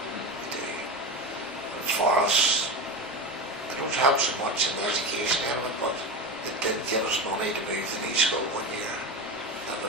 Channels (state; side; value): normal; both; correlation 0.22